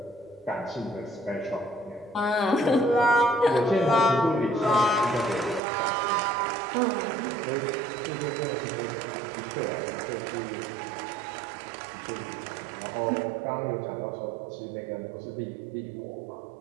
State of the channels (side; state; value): left; drops out; at 5.6 s